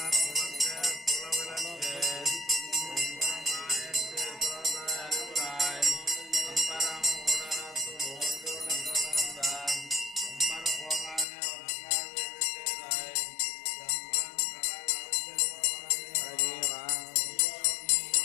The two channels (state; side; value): drops out; right; at 11.2 s